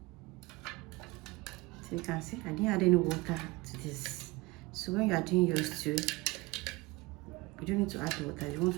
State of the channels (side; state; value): left; quieter; 22.6 dB